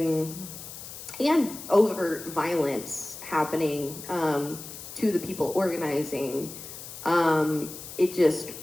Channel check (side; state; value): left; noise; hiss, 12 dB below the sound